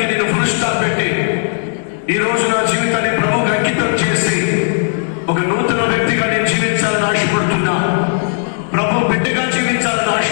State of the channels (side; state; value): right; silent; digital silence